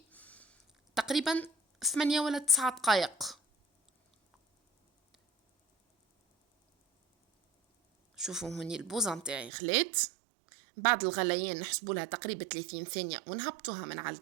تقريبا 8 ولا 9 دقائق. شوفوا هوني البوزة متاعي خلات، بعد الغليان نحسبوا لها تقريبا 30 ثانية ونهبطوها من على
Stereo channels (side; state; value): left; drops out; at 9.5 s